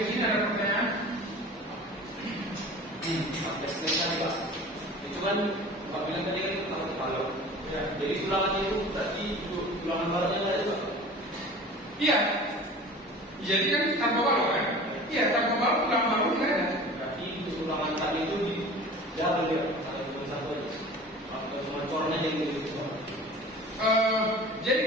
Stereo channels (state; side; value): normal; both; correlation 0.40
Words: sini ada pertanyaan? Sampai selesai Pak. Itu kan Pak bilang tadi kan kalau balok. Ya, jadi tulangannya itu berarti tulangan baloknya nggak ada Pak? Iya. Jadi kan tanpa balok kan? Iya, tanpa balok tulang balok nggak ada. Berarti tulangan tadi itu di jalan ya, kalau cuma satu aja. Atau cuma cornya jadi gitu. Jadi